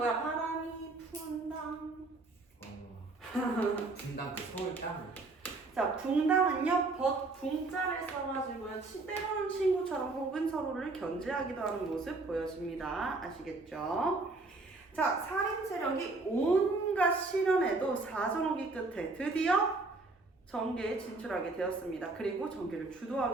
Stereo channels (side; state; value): left; quieter; 3.4 dB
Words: 바람이 분당. 분당 그 서울 땅. 자, 붕당은요, 붕자를 써가지고요, 때로는 친구처럼 혹은 서로를 견제하기도 하는 모습 보여줍니다. 아시겠죠? 자, 살인 세력이 온갖 시련에도 사정오기 끝에 드디어 정계에 진출하게 되었습니다. 그리고 정계를